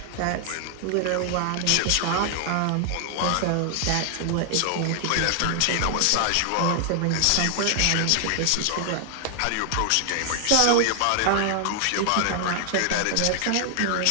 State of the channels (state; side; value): different; both; correlation 0.00